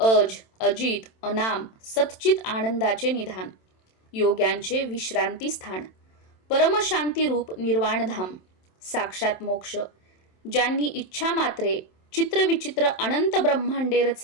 अजित, अनाम, सच्चित आनंदाचे निधान, योग्यांचे विश्रांती स्थान, परमशांतीरूप निर्वाणधाम, साक्षात मोक्ष. ज्यांनी इच्छा मात्रे चित्रविचित्र अनंत ब्रह्मांडे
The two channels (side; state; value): right; late; 27 ms